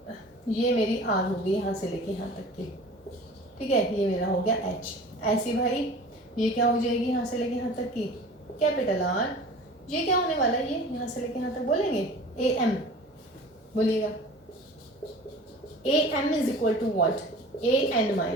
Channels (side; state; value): both; normal; correlation 0.42